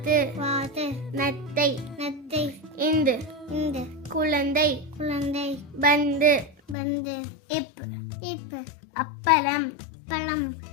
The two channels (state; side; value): drops out; right; at 6.8 s